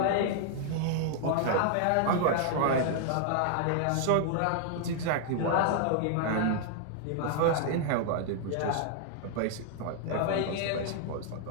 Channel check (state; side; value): different; both; correlation -0.01